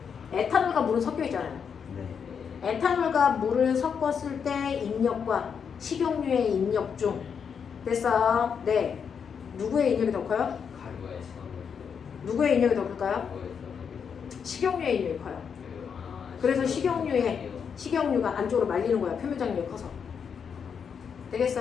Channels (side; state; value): right; quieter; 6.8 dB